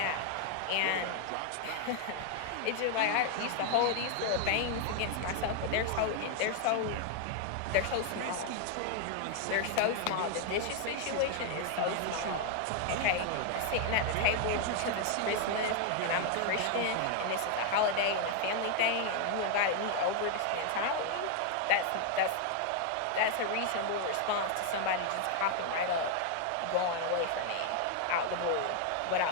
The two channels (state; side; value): different; both; correlation 0.00